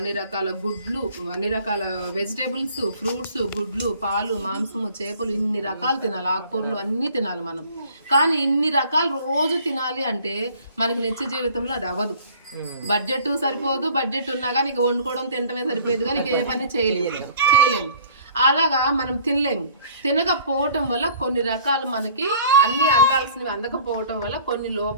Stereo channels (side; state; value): both; inverted; correlation -0.52